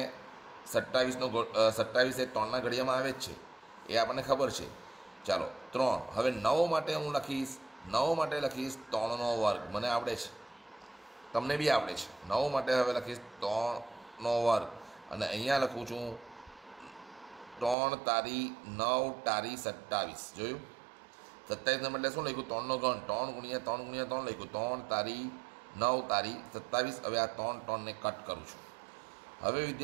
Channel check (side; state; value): left; drops out; at 17.8 s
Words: 27 એ 3ના ઘડિયામાં આવે જ છે, એ આપણને ખબર છે. ચાલો 3. હવે 9 માટે હું લખીશ 3નો વર્ગ. મને આવડે છે, તમને બી આવડે છે. 9 માટે હવે લખીશ 3નો વર્ગ. અને અહીંયા લખું છું 3 તારી 9 તારી 27. જોયું? 27 બદલે શું લખ્યું? 3નો ઘન. 3 ગુણ્યા 3 લખ્યું. 3 તારી 9 તારી 27. હવે આ 3 ને કટ કરું છું. હવે